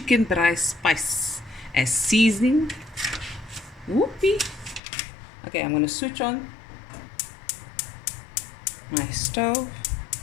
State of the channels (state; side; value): drops out; right; at 4.8 s